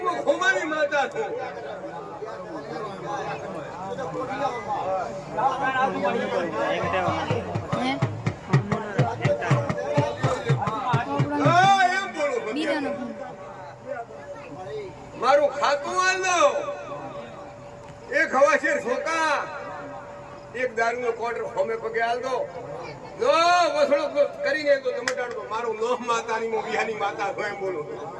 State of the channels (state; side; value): identical; both; correlation 1.00